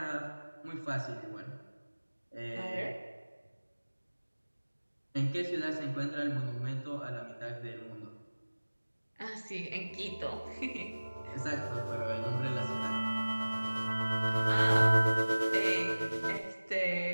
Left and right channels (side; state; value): both; inverted; correlation -1.00